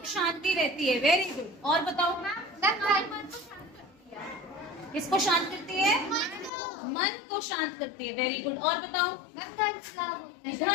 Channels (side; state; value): right; drops out; at 6.5 s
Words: शांति रहती है। Very good. और बताओ, किसको शांत करती है? मन को शांत करती है। Very good. और बताओ, धन